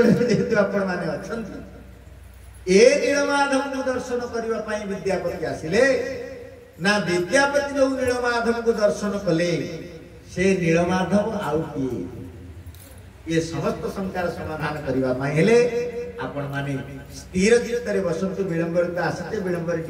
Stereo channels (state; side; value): identical; both; correlation 1.00